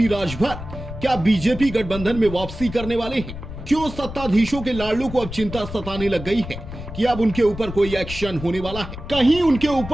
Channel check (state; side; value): noise; left; rumble, 10 dB below the sound